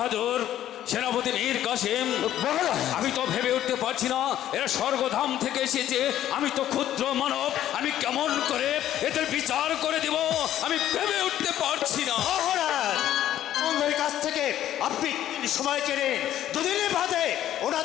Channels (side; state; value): right; quieter; 12.1 dB